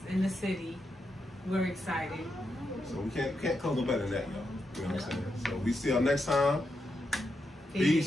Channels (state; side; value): normal; both; correlation 0.84